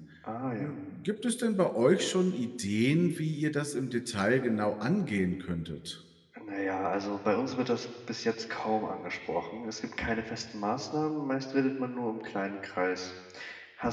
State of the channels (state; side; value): identical; both; correlation 1.00